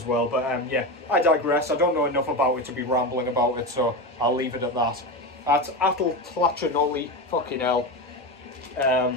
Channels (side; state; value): both; normal; correlation 0.19